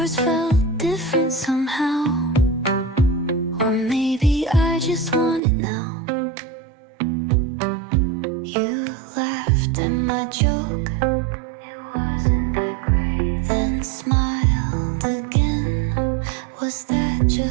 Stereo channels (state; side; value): drops out; left; at 5.4 s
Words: felt different somehow. Or maybe I just want it now. You laughed at my joke, it wasn't that great, then smiled again. Was that